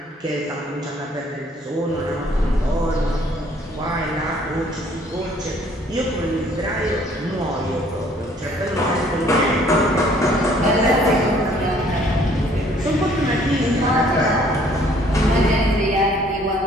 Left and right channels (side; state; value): both; normal; correlation 0.60